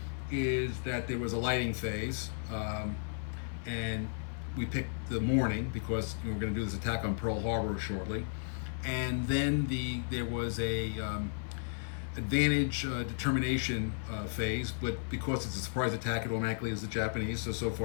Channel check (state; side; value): silent; right; 55 dB below the other